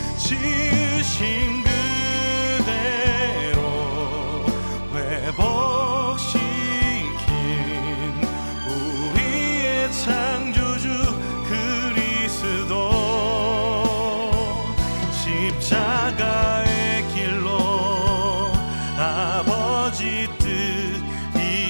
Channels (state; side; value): inverted; both; correlation -1.00